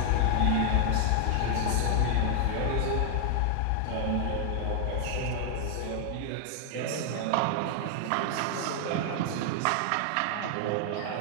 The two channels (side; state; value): both; different; correlation 0.00